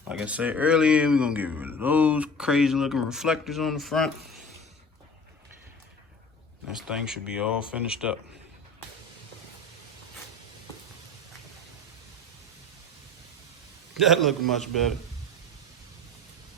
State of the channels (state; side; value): normal; both; correlation 0.38